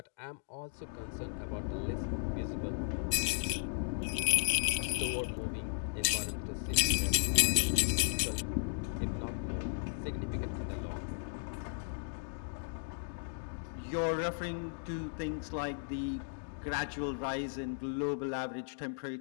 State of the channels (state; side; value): silent; right; digital silence